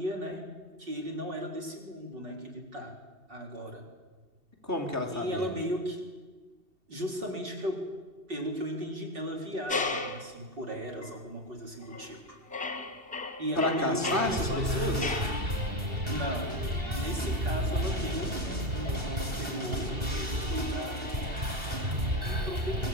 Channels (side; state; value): left; late; 2.7 ms